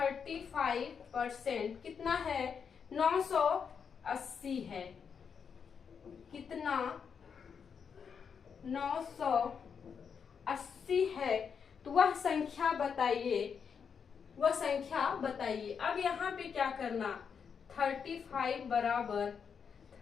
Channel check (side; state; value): right; quieter; 6.6 dB